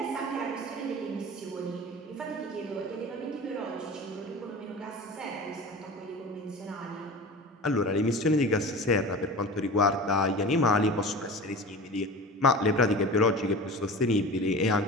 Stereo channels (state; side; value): normal; both; correlation 0.35